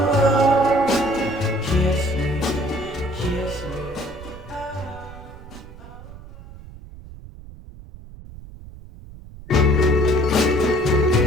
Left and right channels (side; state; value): right; noise; rumble, 17 dB below the sound